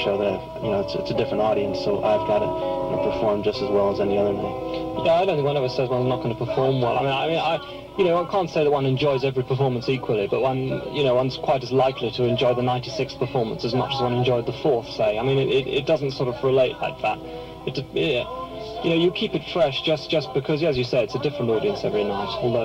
that it's a different audience, so I've got to perform just as well as any other night. Yeah, I don't think one ever says one's not going to perform well. I can't say that one enjoys every performance equally, but one's quite as likely to enjoy the 96th performance as much as one enjoyed the 4th, say. I mean, it doesn't sort of relate like that. You keep it fresh just because, as you say, it's a different audience every night.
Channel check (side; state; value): both; identical; correlation 1.00